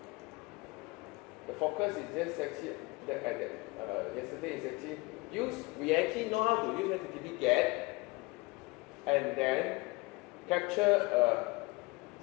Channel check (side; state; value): right; quieter; 24.7 dB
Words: The focus is just actually yesterday is actually we actually know how to use HTTP GET and then capture